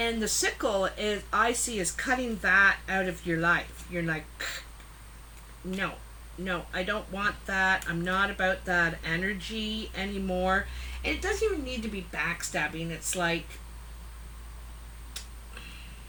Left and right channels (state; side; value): identical; both; correlation 1.00